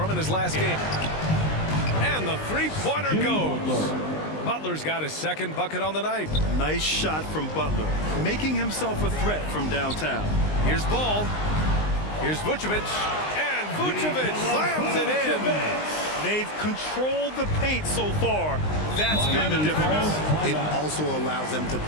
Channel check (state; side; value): late; right; 19 ms